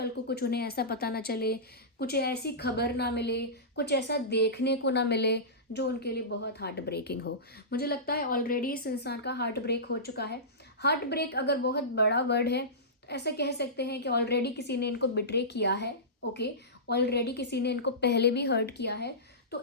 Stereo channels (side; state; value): both; normal; correlation -0.19